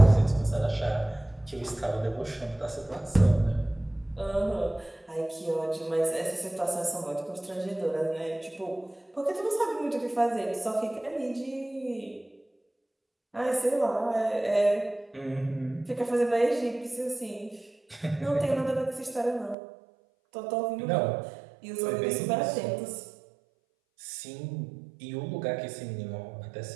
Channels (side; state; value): left; drops out; at 19.6 s